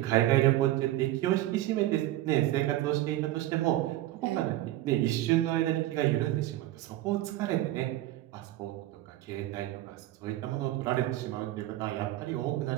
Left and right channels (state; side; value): quieter; left; 15.2 dB